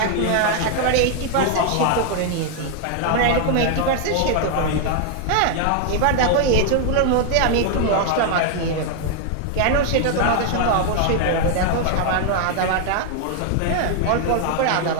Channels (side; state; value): both; different; correlation 0.00